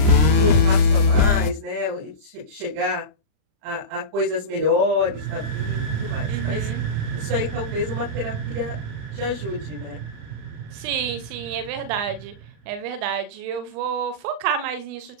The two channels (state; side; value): late; left; 39 ms